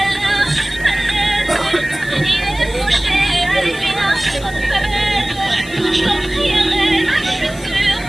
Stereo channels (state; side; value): noise; left; hiss, 19 dB below the sound